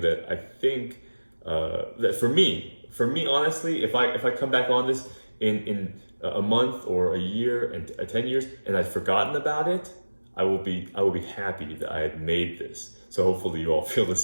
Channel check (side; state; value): both; inverted; correlation -1.00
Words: that I think that for me honestly, if I come back on this in a month or a year and 10 years and I've forgotten about it, I will be happy that I had made this. So hopefully you all feel the